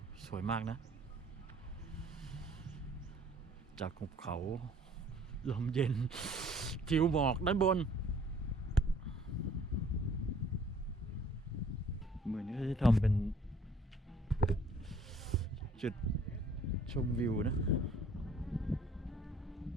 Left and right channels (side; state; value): both; normal; correlation 0.57